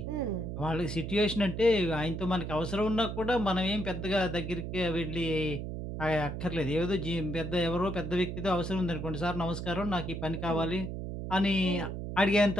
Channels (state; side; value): noise; right; hum, 6 dB below the sound